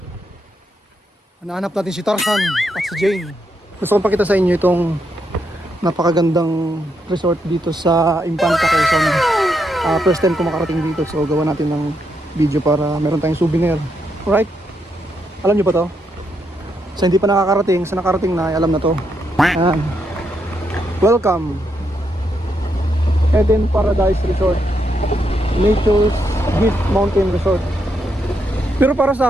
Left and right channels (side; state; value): both; normal; correlation 0.80